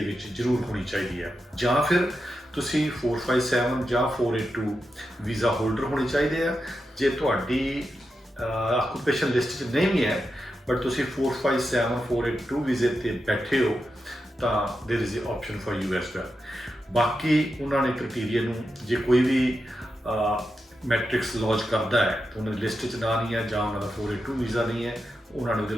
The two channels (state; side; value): normal; both; correlation 0.88